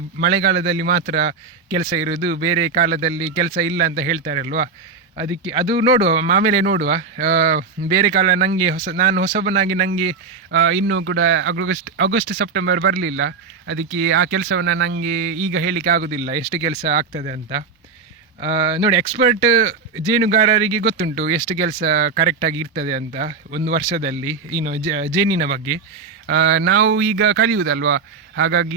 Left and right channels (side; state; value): left; quieter; 4.9 dB